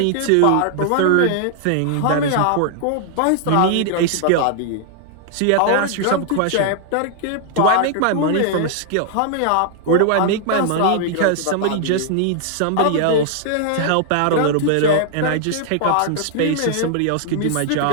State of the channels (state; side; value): different; both; correlation -0.01